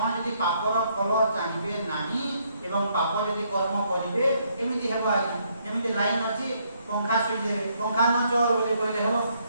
ଯଦି ପାପର ଫଳ ଚାହିଁବେ ନାହିଁ ଏବଂ ପାପ ଯଦି କର୍ମ କରିବେ ଏମିତି ହେବ ଆଜ୍ଞା। ଯେମିତି ଲାଇନ୍ ଅଛି, ପଙ୍ଖା ସୁଇଚ୍ ଦେବେ, ପଙ୍ଖା ନ ଚଲ ବୋଲି କହିଲେ ହେବ।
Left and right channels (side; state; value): both; inverted; correlation -0.71